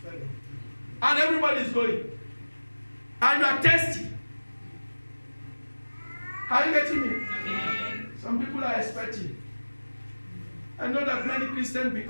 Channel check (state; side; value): inverted; both; correlation -1.00